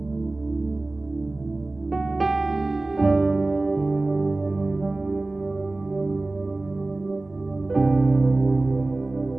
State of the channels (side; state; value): left; quieter; 3.0 dB